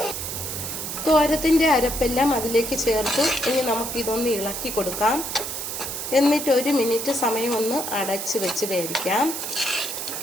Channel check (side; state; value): right; noise; hiss, 5 dB below the sound